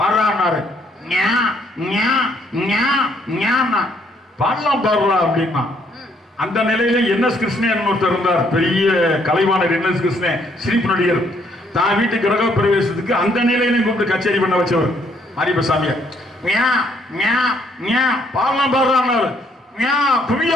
பாடலாம் பாடுறா அப்படின்னா. அந்த நிலையில என்எஸ் கிருஷ்ணன் ஒருத்தர் இருந்தார், பெரிய கலைவாணர் என்எஸ் கிருஷ்ணன், சிரிப்பு நடிகர். தான் வீட்டு கிரக பிரவேசத்துக்கு அந்த நிலையிலையும் கூப்பிட்டு கச்சேரி பண்ண வச்சவர் மாரியப்ப சாமியார். பாடலாம் பாடுறான்னாரு.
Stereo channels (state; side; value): normal; both; correlation 0.68